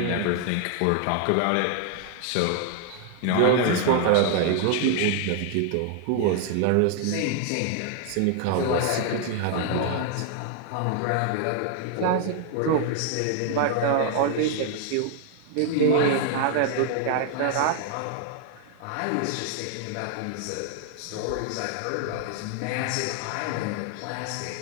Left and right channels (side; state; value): both; different; correlation 0.00